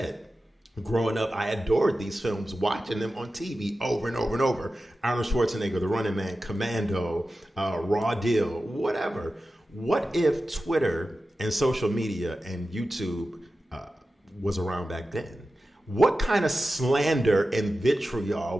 growing up, I adored these films, watching them on TV over and over and over. Arnold Schwarzenegger, The Running Man, Commando, Raw Deal, whatever. What if Twitter and social media and YouTube was around back then? What kind of slander and vitriol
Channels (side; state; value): both; normal; correlation 0.93